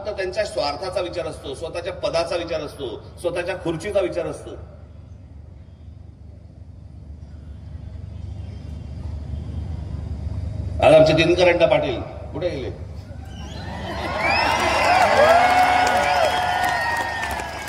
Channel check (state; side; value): identical; both; correlation 1.00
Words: त्यांच्या स्वार्थाचा विचार असतो, स्वतःच्या पदाचा विचार असतो, स्वतःच्या खुर्चीचा विचार असतो. आज आमचे दिनकर अण्णा पाटील कुठे गेले?